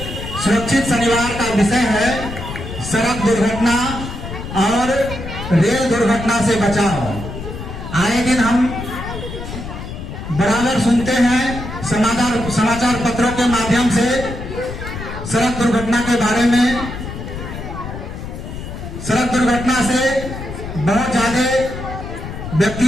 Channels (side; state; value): left; noise; rumble, 8 dB below the sound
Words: सुरक्षित शनिवार का विषय है सड़क दुर्घटना और रेल दुर्घटना से बचाव। आए दिन हम बराबर सुनते हैं समाचार पत्रों के माध्यम से सड़क दुर्घटना के बारे में। सड़क दुर्घटना से बहुत ज्यादा